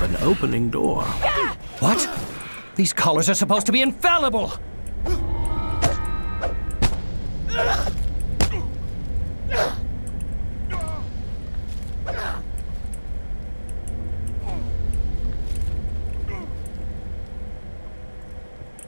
an opening door. What? These collars are supposed to be infallible!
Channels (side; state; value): both; inverted; correlation -1.00